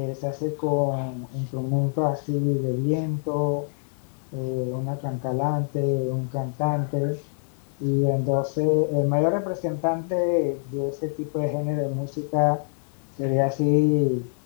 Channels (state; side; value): silent; right; digital silence